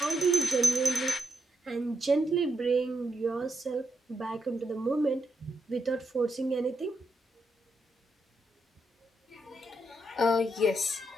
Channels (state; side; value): normal; both; correlation 0.82